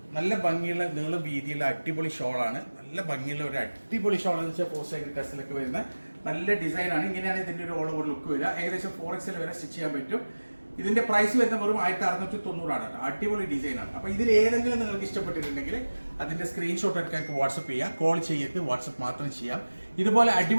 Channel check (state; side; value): inverted; both; correlation -1.00